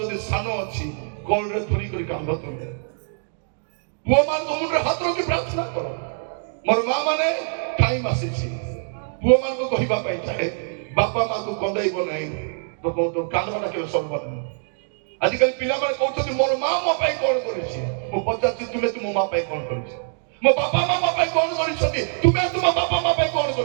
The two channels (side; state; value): left; silent; digital silence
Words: ସାନ ଅଛି କୋଳରେ ଧରି କରି କାନ୍ଦ ତୁମେ। ପୁଅ ମାନଙ୍କ ମୁଣ୍ଡରେ ହାତ ରଖି ପ୍ରାର୍ଥନା କର। ମୋର ମା ମାନେ ଟାଇମ ଆସିଛି ପୁଅ ମାନଙ୍କୁ କହିବା ପାଇଁ ଚାହେଁ, ବାପା ମାକୁ କନ୍ଦାଇବ ନାହିଁ, କାନ୍ଦଟା କେବେ ସରିବ ନାହିଁ। ଆଜିକାଲି ପିଲାମାନେ କହୁଛନ୍ତି ମୋର ମା ମୋ ପାଇଁ କଣ କରିଛି। ମୁଁ ପଚାରୁଛି ତୁମେ ତୁମ ମା ପାଇଁ କଣ କରିଛ? ମୋ ବାପା ମା ମୋ ପାଇଁ କଣ କରିଛନ୍ତି? ତୁମେ ତୁମ ବାପା ମା ପାଇଁ କଣ